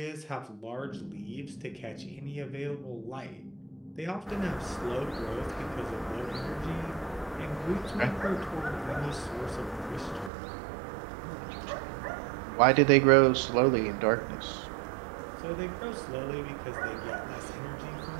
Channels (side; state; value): left; drops out; at 10.3 s